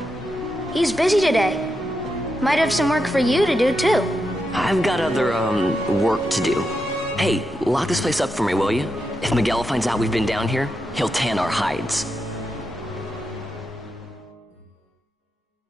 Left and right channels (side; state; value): both; normal; correlation 0.86